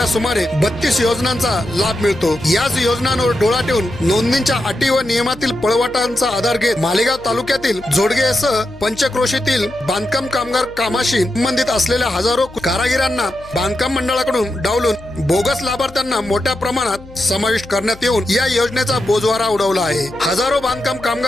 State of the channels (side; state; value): left; noise; hum, 20 dB below the sound